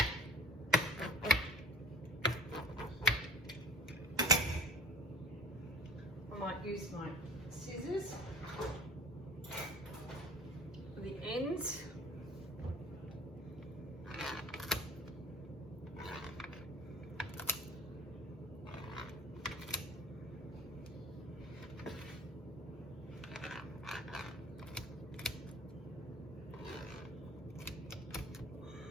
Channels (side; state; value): both; normal; correlation 0.44